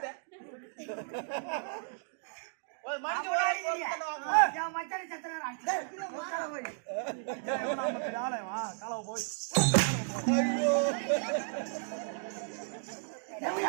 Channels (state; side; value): silent; left; digital silence